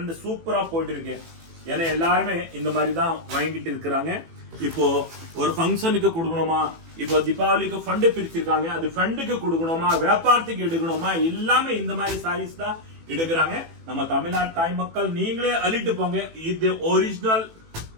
சூப்பரா போயிட்டு இருக்கு. ஏன்னா எல்லாருமே இந்த மாதிரி தான் வாங்கிட்டு இருக்கிறாங்க. இப்போ ஒரு ஃபங்க்ஷனுக்கு கொடுக்கணுமா, இப்போ தீபாவளிக்கு ஃபண்ட் பிரிச்சிருக்காங்க, அது ஃபண்டுக்கு கொடுக்கணுமா, வியாபாரத்துக்கு எடுக்கணுமா, எல்லாமே இந்த மாதிரி சாரீஸ் தான் எடுக்கிறாங்க. நம்ம தமிழ்நாடு தாய் மக்கள் நீங்களே அள்ளிட்டு போங்க. இது ஒரிஜினல்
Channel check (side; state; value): left; late; 18 ms